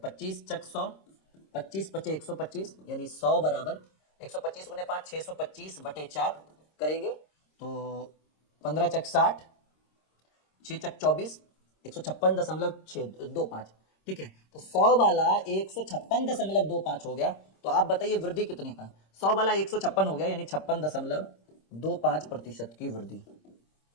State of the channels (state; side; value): late; right; 26 ms